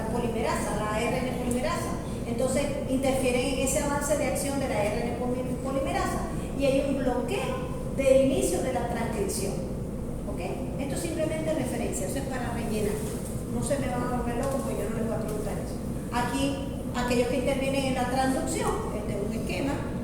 polimerasa, a la ARN polimerasa. Entonces interfieren en ese avance de acción de la ARN polimerasa y hay un bloqueo del inicio de la transcripción. ¿Okay? Esto es simplemente referencia, eso es para rellenar. No se me van a volver locos porque yo no les voy a preguntar eso. Aquí, aquellos que intervienen en la transducción, este es un esquema,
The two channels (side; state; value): both; identical; correlation 1.00